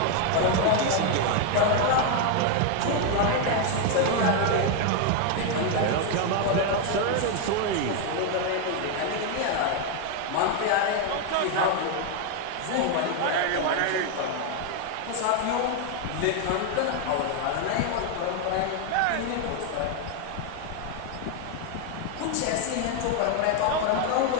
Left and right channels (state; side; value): different; both; correlation 0.01